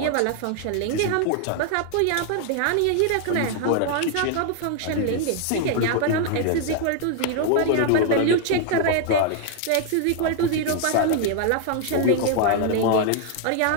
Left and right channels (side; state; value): both; different; correlation 0.00